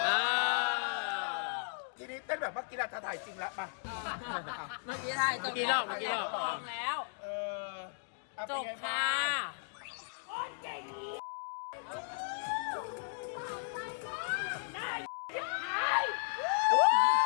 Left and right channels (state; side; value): silent; right; digital silence